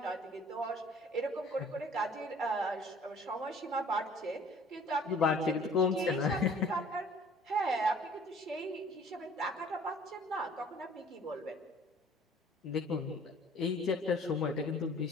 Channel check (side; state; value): both; normal; correlation 0.52